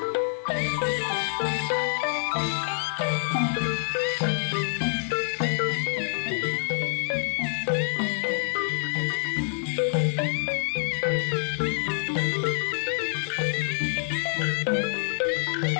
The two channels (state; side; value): silent; right; 59 dB below the other